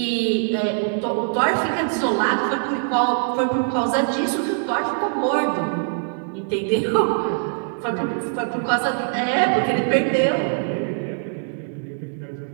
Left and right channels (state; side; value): silent; left; digital silence